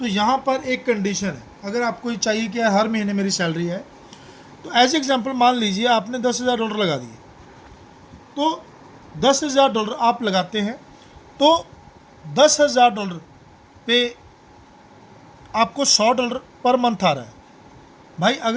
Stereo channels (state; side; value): identical; both; correlation 1.00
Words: यहाँ पर एक कंडीशन है। अगर आपको ये चाहिए कि हर महीने मेरी सैलरी है, तो एज एग्जांपल मान लीजिए आपने $10,000 लगा दिए, तो $10,000 आप लगाते हैं तो $10,000 पे आपको $100 पर मंथ आ रहा है। भाई